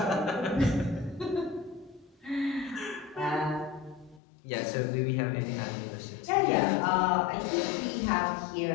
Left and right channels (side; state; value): right; drops out; at 4.2 s